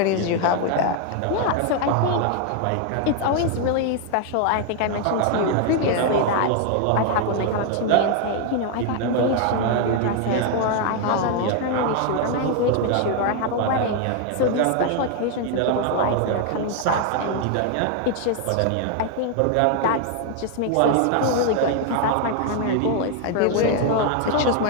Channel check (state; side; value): different; both; correlation 0.00